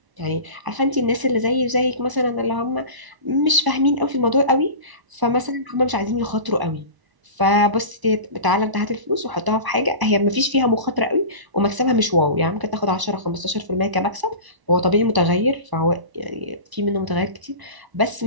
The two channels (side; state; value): left; late; 1.0 ms